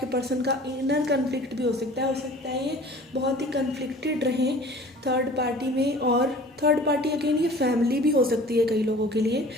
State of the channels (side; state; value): both; normal; correlation 0.46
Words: पर्सन का इनर कन्फ्लिक्ट भी हो सकता है ये बहुत ही कन्फ्लिक्टेड रहें थर्ड पार्टी में, और थर्ड पार्टी अगेन ये फैमिली भी हो सकती है कई लोगों के लिए,